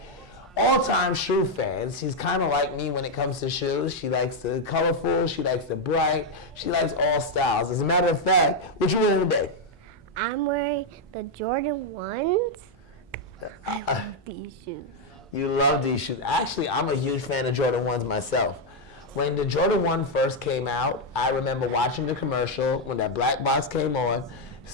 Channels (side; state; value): both; normal; correlation 0.01